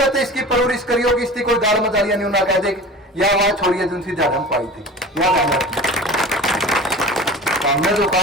से इसकी परवरिश करियो कि इसकी कोई गाल मजालिया नहीं ना कह दे या वहां छोड़िए जिनसी जन्म पाई थी। हमने जो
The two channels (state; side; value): normal; both; correlation 0.36